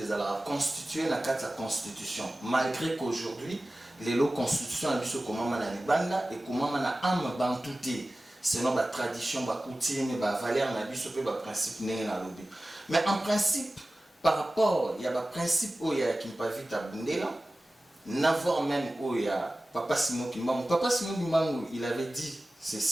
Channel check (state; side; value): normal; both; correlation 0.96